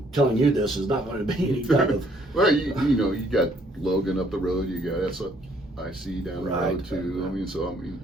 telling you this is not going to be any kind of well, you got Logan up the road, you got SIC down the road too.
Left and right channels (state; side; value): normal; both; correlation 0.65